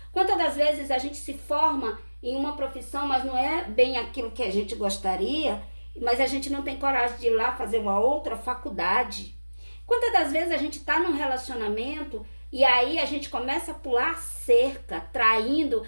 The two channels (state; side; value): inverted; both; correlation -1.00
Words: Quantas das vezes a gente se forma em uma profissão, mas não é bem aquilo que a gente gostaria, mas a gente não tem coragem de ir lá fazer uma outra faculdade. Quantas das vezes a gente está num relacionamento e aí a gente começa a pular cerca, traindo,